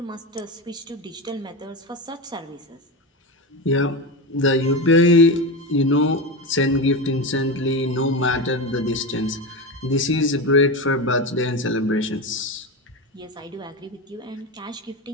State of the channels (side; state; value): both; normal; correlation 0.19